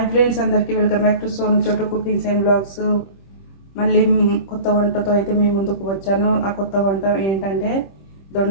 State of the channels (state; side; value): late; right; 26 ms